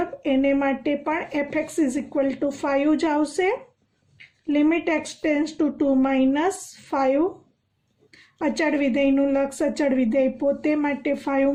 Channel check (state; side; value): identical; both; correlation 1.00